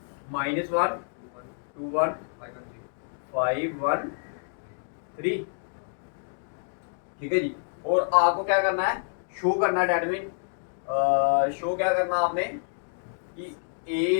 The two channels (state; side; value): silent; right; digital silence